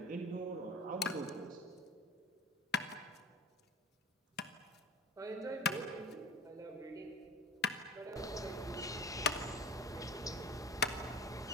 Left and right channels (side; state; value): both; normal; correlation 0.38